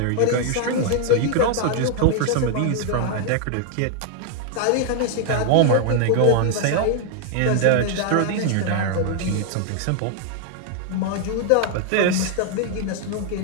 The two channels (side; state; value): both; different; correlation 0.00